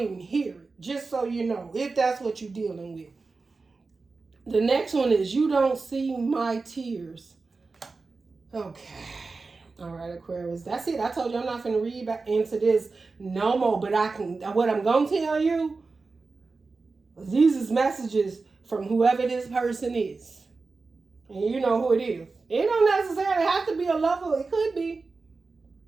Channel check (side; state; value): left; quieter; 4.0 dB